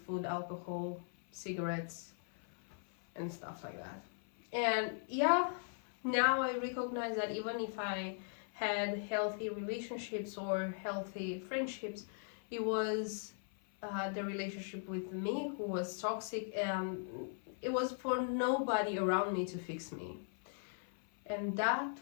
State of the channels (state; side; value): silent; right; 52 dB below the other